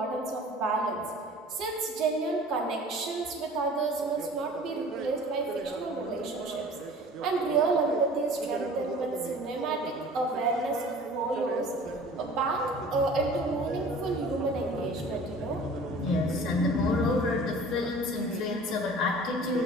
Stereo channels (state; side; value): normal; both; correlation 0.45